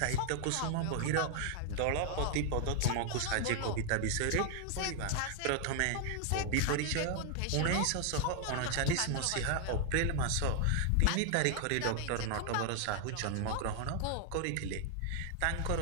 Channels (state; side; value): different; both; correlation 0.00